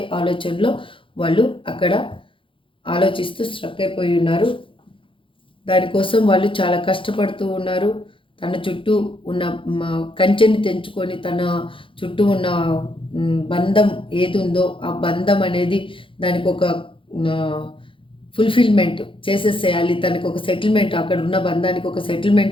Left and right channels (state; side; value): late; right; 0.25 ms